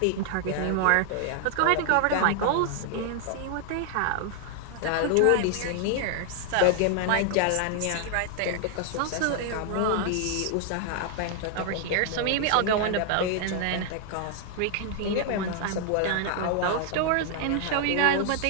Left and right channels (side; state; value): both; different; correlation 0.00